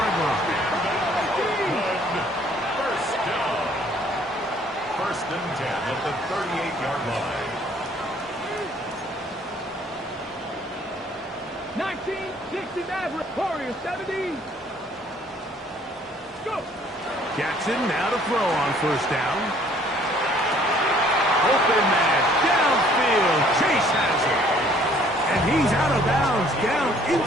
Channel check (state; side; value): normal; both; correlation 0.59